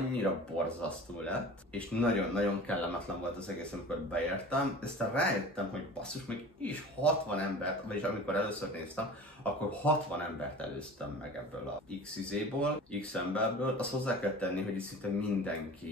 borzasztó lett, és nagyon-nagyon kellemetlen volt az egész, amikor beértem, aztán rájöttem, hogy basszus, még is 60 embert, vagyis amikor először néztem, akkor 60 embert előztem meg ebből a X-izéból, X-emberből. Azt hozzá kell tenni, hogy itt szinte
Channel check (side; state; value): both; normal; correlation 0.39